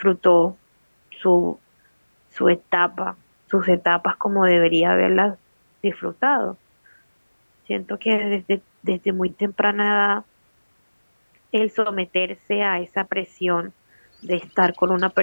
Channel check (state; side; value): inverted; both; correlation -1.00